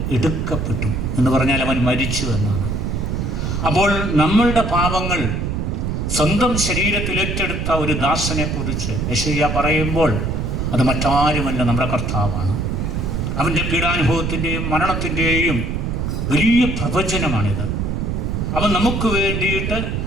എടുക്കപ്പെട്ടു എന്ന് പറഞ്ഞാൽ അവൻ മരിച്ചു എന്നാണ്. അപ്പോൾ നമ്മളുടെ പാപങ്ങൾ സ്വന്തം ശരീരത്തിൽ ഏറ്റെടുത്ത ഒരു ദാസനെ കുറിച്ച് യെശയ്യാ പറയുമ്പോൾ അത് മറ്റാരുമല്ല, നമ്മുടെ കർത്താവാണ്. അവൻ്റെ പീഡാനുഭവത്തിൻ്റെയും മരണത്തിൻ്റെയും വലിയ പ്രവചനമാണിത്. അവൻ നമുക്ക് വേണ്ടിയിട്ട്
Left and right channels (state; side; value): noise; right; rumble, 1 dB below the sound